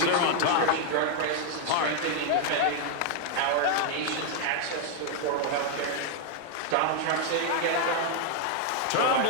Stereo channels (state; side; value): different; both; correlation 0.00